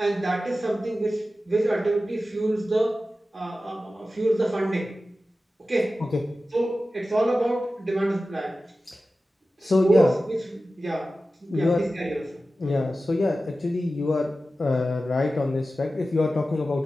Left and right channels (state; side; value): normal; both; correlation 0.94